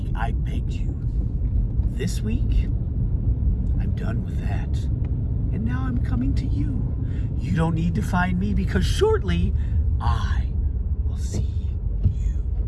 I begged you. This week, I'm done with that. And now I'm coming to you. You don't need to find me because shortly I will see you.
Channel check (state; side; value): identical; both; correlation 1.00